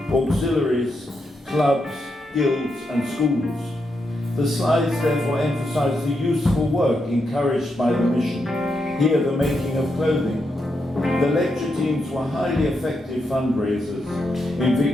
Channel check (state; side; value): normal; both; correlation 0.83